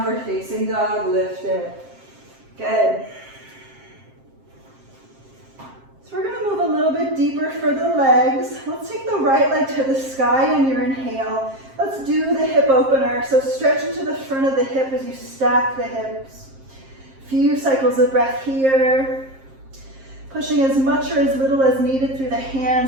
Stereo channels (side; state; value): left; late; 7.5 ms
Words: facing dog, lift it. Good. So we're going to move a little bit deeper for the legs. Let's take the right leg to the sky on your inhale. Let's do the hip opener. So stretch into the front of the hip as you stack the hips. Few cycles of breath here. Pushing as much or as little as needed through the